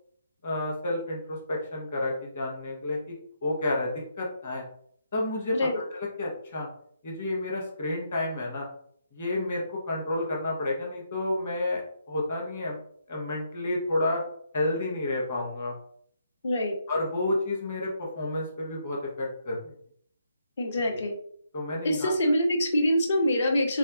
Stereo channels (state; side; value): inverted; both; correlation -0.77